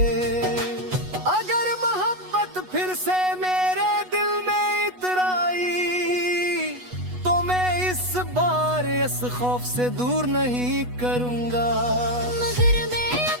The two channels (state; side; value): late; left; 8.2 ms